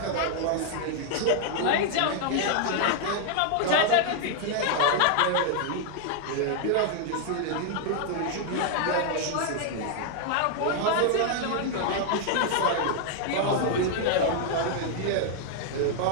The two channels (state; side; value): different; both; correlation 0.00